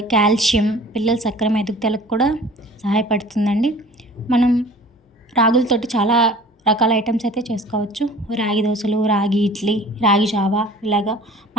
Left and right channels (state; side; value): normal; both; correlation 0.46